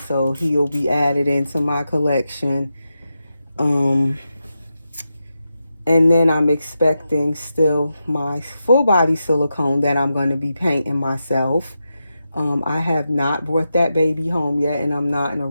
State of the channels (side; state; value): both; inverted; correlation -0.88